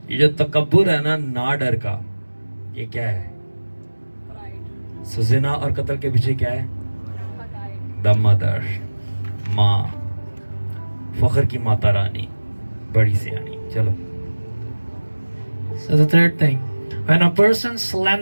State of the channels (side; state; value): both; inverted; correlation -1.00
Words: ये जो तकब्बुर है ना डर का, ये क्या है? सो जिना और कत्ल के पीछे क्या है? द मदर, माँ, फख्र की माता रानी, बड़ी सियानी. चलो. So the third thing, when a person